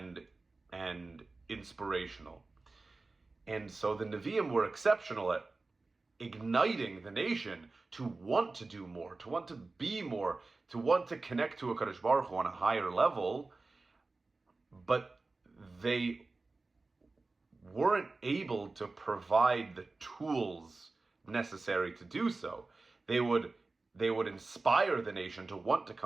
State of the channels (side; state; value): left; quieter; 3.5 dB